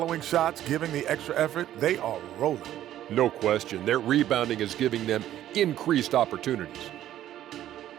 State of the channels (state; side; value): quieter; left; 12.4 dB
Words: shots, giving the extra effort. They are rolling. No question, their rebounding is giving them increased opportunities.